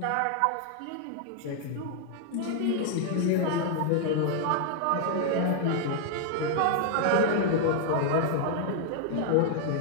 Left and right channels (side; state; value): both; different; correlation 0.00